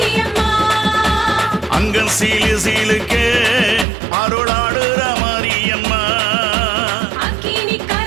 அங்கன் சீலு சீலுக்கு அருளாடுற மாரியம்மா.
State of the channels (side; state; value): left; drops out; at 3.9 s